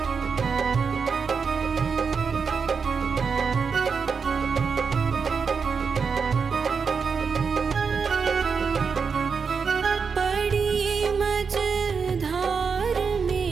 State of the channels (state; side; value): quieter; left; 5.7 dB